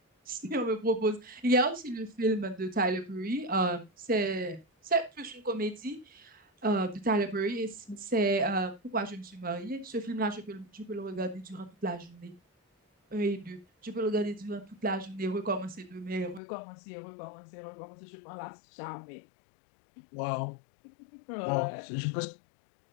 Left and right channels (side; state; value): right; drops out; at 16.4 s